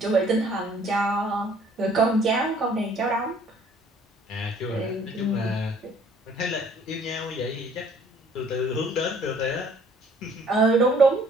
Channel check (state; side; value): normal; both; correlation 0.58